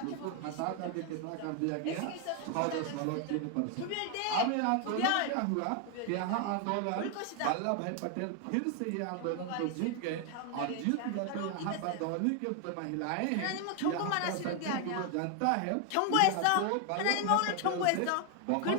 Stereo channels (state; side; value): different; both; correlation 0.00